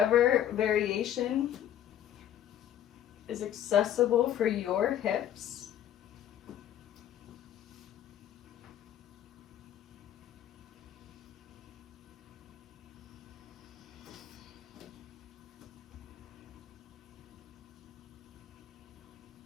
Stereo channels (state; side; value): quieter; right; 10.9 dB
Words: variation is accessible for your hips.